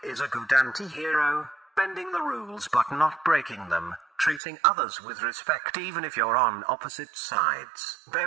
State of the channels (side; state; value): left; drops out; at 4.4 s